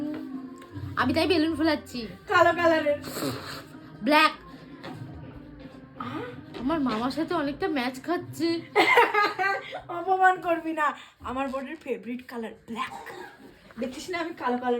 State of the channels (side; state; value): both; identical; correlation 1.00